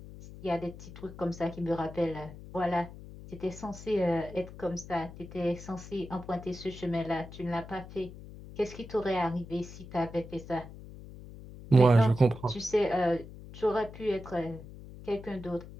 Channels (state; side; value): noise; left; hum, 15 dB below the sound